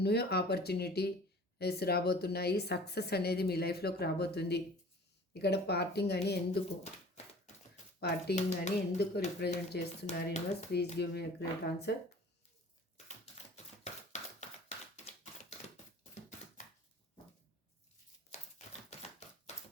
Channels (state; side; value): normal; both; correlation 0.46